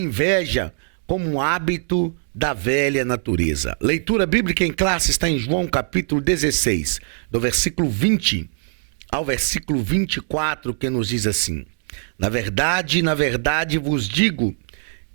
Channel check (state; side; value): silent; left; digital silence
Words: como um hábito da velha natureza. Leitura bíblica em classe está em João capítulo 16, do versículo 20 ao versículo 24, que nos diz assim: na verdade vos digo